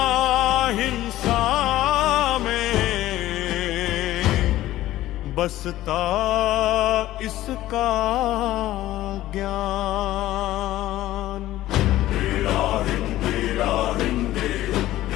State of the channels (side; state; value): right; quieter; 15.0 dB